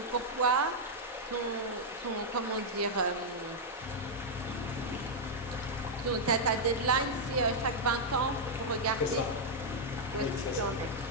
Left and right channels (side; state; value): both; normal; correlation -0.04